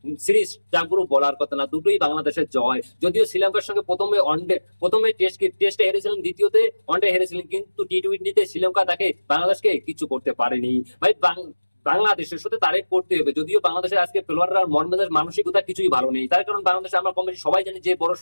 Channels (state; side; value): inverted; both; correlation -1.00